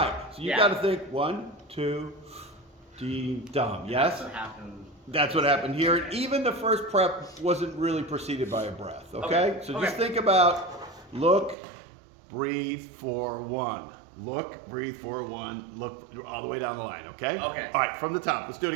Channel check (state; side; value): drops out; left; at 11.6 s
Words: So you Yeah. got to think 1, 2, D, dum. Yes. That's what happened. That's what happened here. And even the first prep wasn't really preceded by a breath. Okay. Okay. So just Okay. think about look, breathe for 1. Look, breathe for 1. Look all the way down the line. Okay. Okay. All right. From the top. Let's do it